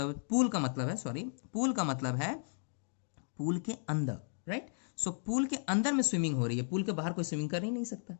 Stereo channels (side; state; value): right; silent; digital silence